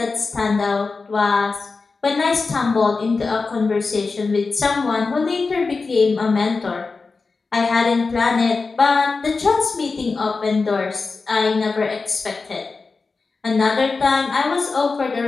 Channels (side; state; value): right; quieter; 4.2 dB